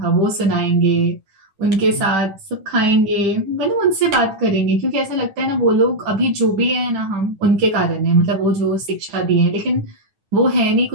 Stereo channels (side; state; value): left; late; 10 ms